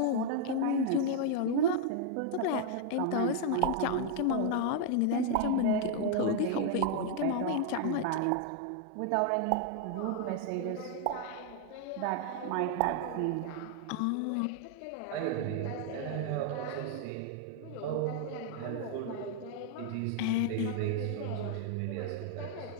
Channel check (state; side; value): different; both; correlation 0.00